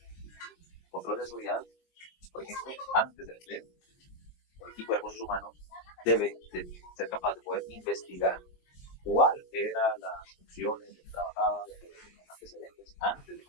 Control de seguridad, por ejemplo, antes del empleo. El equipo de recursos humanos debe de ser capaz de poder investigar cuáles eran las funciones de que trabajaba, de los antecedentes antes de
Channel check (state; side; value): late; right; 23 ms